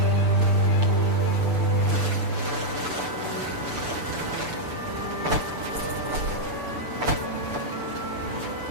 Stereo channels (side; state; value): left; late; 6.9 ms